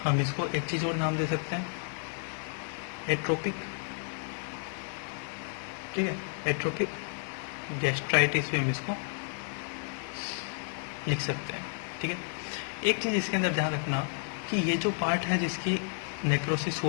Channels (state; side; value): silent; right; 57 dB below the other